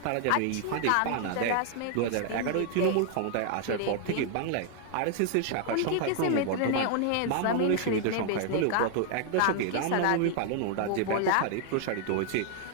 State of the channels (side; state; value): both; different; correlation 0.00